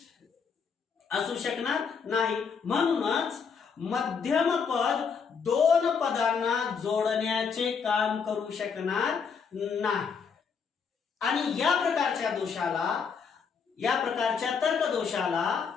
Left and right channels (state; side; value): quieter; right; 6.1 dB